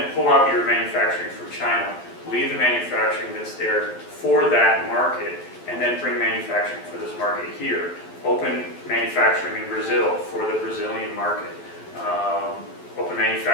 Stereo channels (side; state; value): right; late; 12 ms